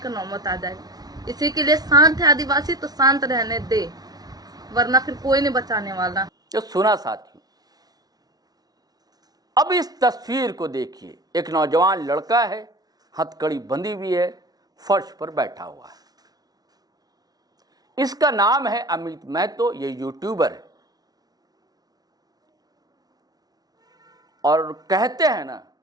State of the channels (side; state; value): left; late; 0.19 ms